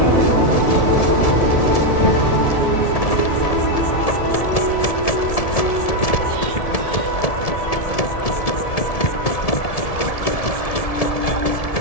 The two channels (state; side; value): late; right; 1.7 ms